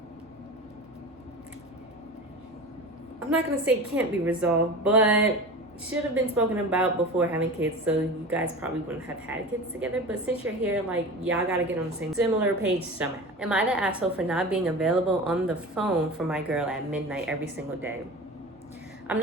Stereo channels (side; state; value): both; normal; correlation 0.33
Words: I'm not going to say can't be resolved, but should have been spoken about before having kids, so you guys probably wouldn't have had kids together. But since you're here, like, y'all gotta get on the same similar page somehow. Am I the asshole for not being available on the phone for my girl at midnight every single day? I'm